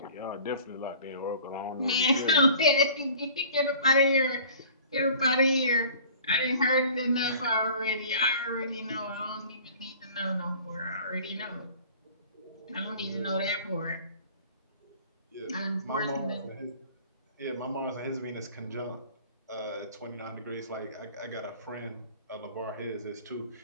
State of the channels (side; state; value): both; inverted; correlation -0.46